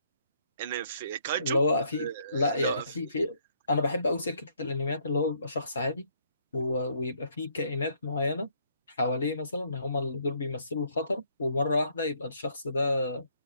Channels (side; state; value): both; inverted; correlation -0.68